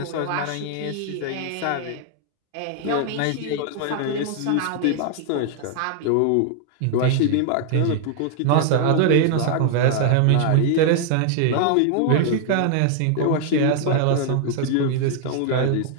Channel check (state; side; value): different; both; correlation 0.00